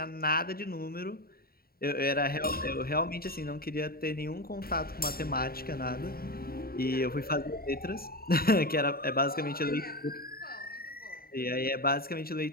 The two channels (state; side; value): late; right; 0.44 ms